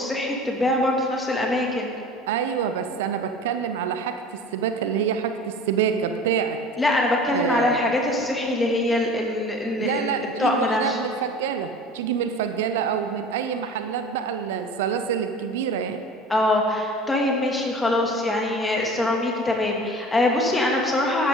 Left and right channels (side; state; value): both; normal; correlation 0.39